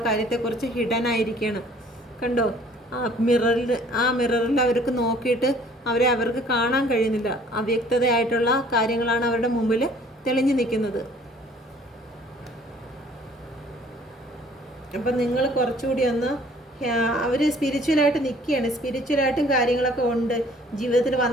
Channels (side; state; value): both; normal; correlation 0.55